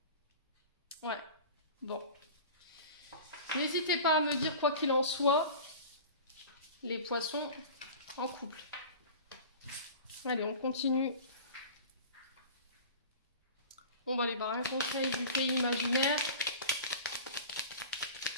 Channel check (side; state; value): both; inverted; correlation -0.37